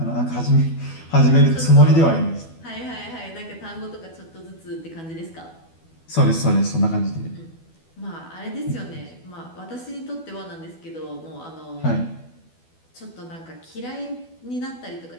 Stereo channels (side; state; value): right; late; 12 ms